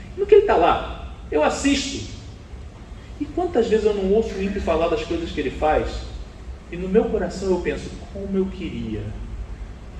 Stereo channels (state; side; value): identical; both; correlation 1.00